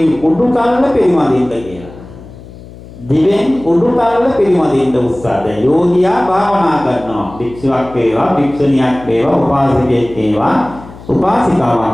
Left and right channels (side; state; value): left; noise; hum, 18 dB below the sound